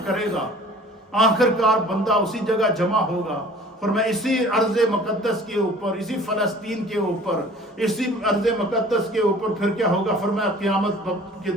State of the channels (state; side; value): normal; both; correlation 0.48